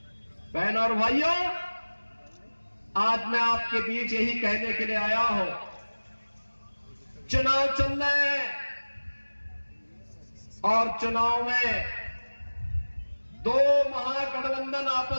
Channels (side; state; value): both; inverted; correlation -1.00